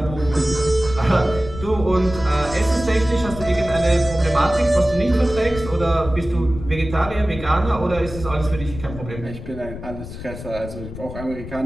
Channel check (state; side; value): noise; left; rumble, 11 dB below the sound